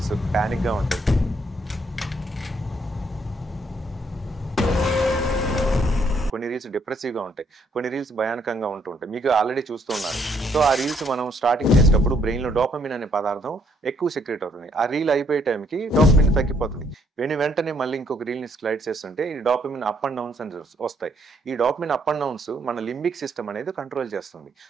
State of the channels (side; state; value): both; normal; correlation 0.70